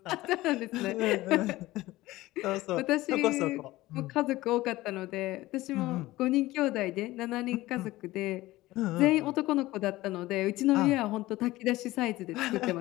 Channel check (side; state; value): right; quieter; 17.9 dB